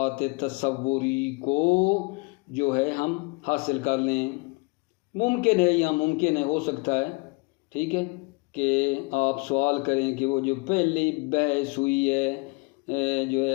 تصوری کو جو ہے ہم حاصل کر لیں۔ ممکن ہے یا ممکن ہے، ہو سکتا ہے، ٹھیک ہے، کہ آپ سوال کریں کہ وہ جو پہلی بحث ہوئی ہے جو ہے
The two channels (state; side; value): quieter; right; 28.7 dB